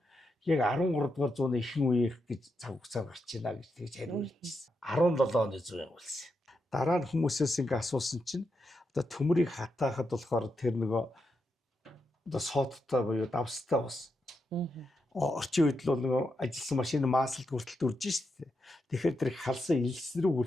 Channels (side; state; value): both; normal; correlation 0.84